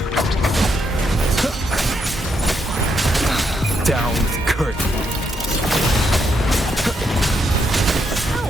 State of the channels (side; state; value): both; normal; correlation 0.77